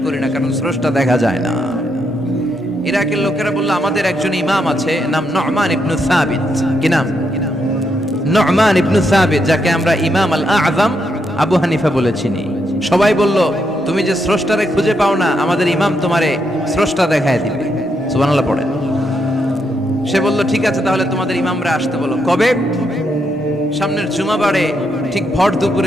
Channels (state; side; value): normal; both; correlation 0.79